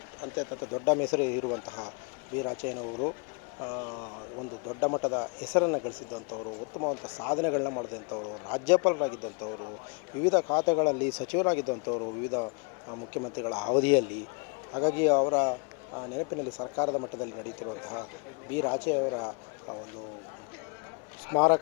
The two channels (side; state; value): right; quieter; 35.2 dB